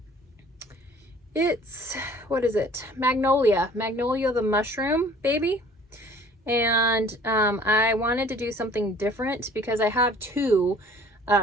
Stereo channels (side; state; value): both; normal; correlation 0.51